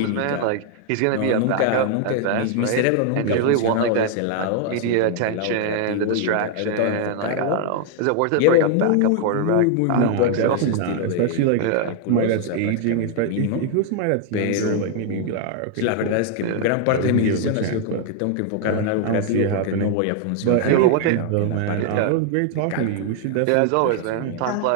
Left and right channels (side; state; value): both; different; correlation 0.00